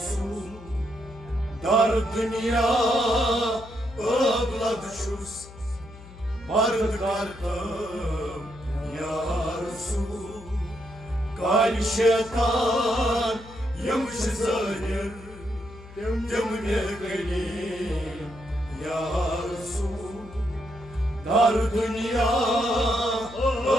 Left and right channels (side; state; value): left; noise; hum, 18 dB below the sound